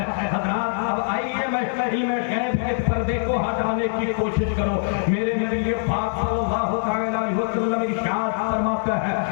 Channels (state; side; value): silent; right; 63 dB below the other